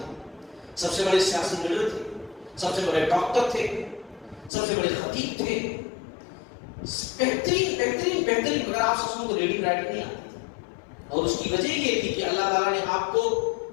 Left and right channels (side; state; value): right; drops out; at 4.5 s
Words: سب سے بڑے سیاسی لیڈر تھے، سب سے بڑے ڈاکٹر تھے، سب سے بڑے خطیب تھے، بہترین بہترین بہترین، مگر آپ صلی اللہ علیہ وسلم کو ریڈنگ رائٹنگ نہیں آتی تھی. اور اس کی وجہ یہ تھی کہ اللہ تعالیٰ نے آپ کو